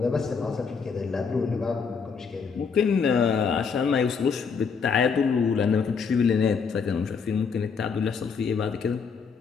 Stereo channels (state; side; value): quieter; right; 5.7 dB